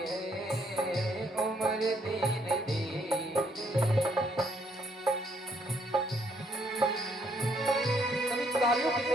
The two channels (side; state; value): both; normal; correlation 0.70